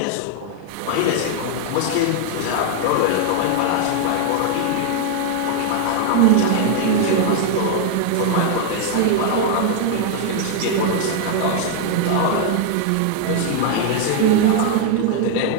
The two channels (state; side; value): different; both; correlation 0.00